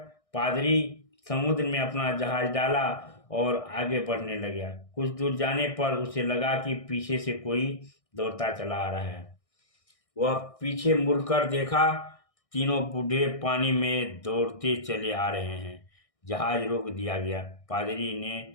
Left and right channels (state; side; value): late; right; 1.6 ms